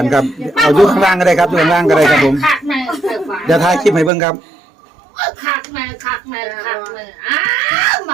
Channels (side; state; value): left; drops out; at 4.1 s